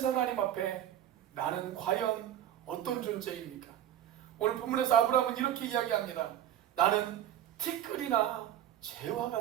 하나님 앞에 나는 과연 어떤 존재입니까? 오늘 본문에서 아브라함은 이렇게 이야기합니다. 나는 티끌이나 재와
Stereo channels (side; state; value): left; quieter; 11.5 dB